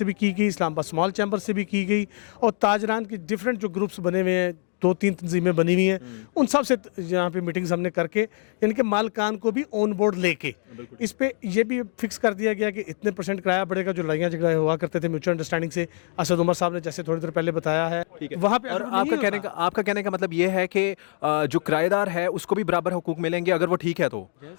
भी की गई, इस्लामाबाद स्मॉल चैम्बर से भी की गई, और ताजरान के डिफरेंट जो ग्रुप्स बने हुए हैं, 2-3 तंजीमें बनी हुई हैं, उन सब से यहाँ पे मीटिंग्स हमने करके यानी कि मालकान को भी ऑन बोर्ड लेके इस पे ये भी फिक्स कर दिया गया कि इतने % किराया बढ़ेगा। जो लड़ाइयाँ झगड़े हुआ करते थे म्यूचुअल अंडरस्टैंडिंग से, असद उमर साहब ने जैसे थोड़ी देर पहले बताया है, वहाँ पे और आपका कहने का मतलब ये है कि जो किराएदार है उसको भी बराबर हुकूक मिलेंगे अगर वो ठीक है तो,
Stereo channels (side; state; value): right; silent; 62 dB below the other